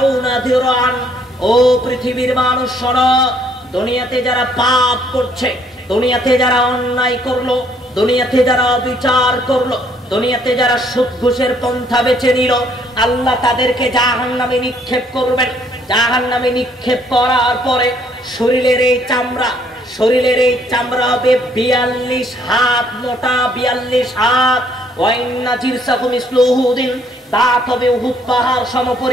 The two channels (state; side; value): normal; both; correlation 0.66